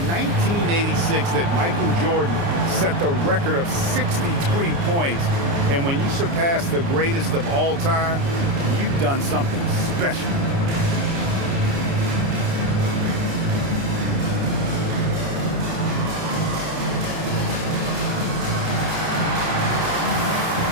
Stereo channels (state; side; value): late; left; 29 ms